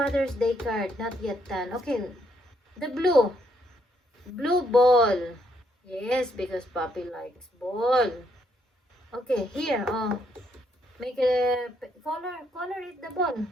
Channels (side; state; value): both; normal; correlation 0.73